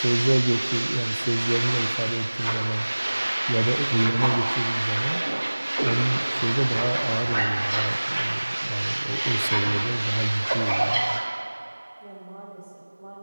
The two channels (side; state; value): both; inverted; correlation -1.00